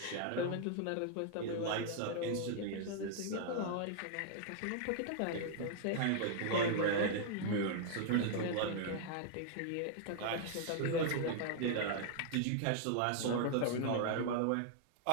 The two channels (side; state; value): both; different; correlation -0.01